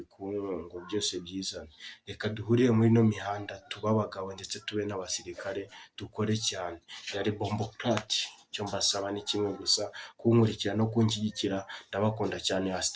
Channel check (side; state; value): both; identical; correlation 1.00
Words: ngo byose byizane. Reka duhurire muri ino mihanda, tube abagabo ndetse tube n'abasirikare, dukore cyane. Yari Bomboclat, icyo mbasaba ni kimwe gusa, kunkurikira no kunshyigikira. Ndabakunda cyane,